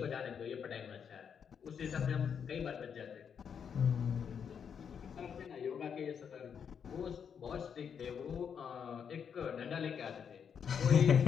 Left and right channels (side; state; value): right; quieter; 7.3 dB